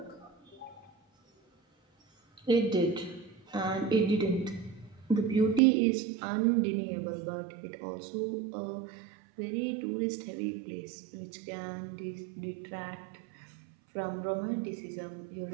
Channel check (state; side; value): drops out; left; at 5.6 s